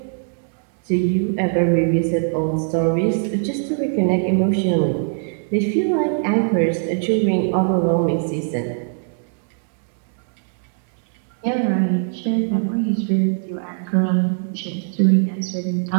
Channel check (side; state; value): left; silent; digital silence